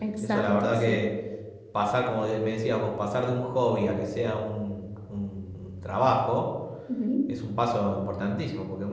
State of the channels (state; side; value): identical; both; correlation 1.00